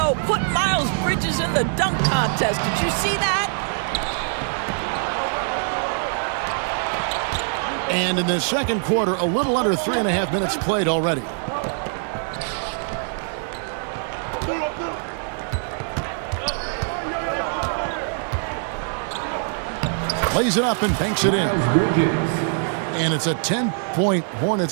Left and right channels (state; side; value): silent; left; 63 dB below the other